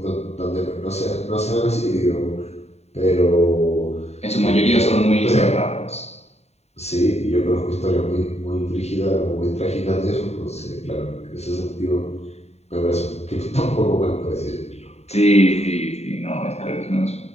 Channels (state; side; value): late; right; 0.31 ms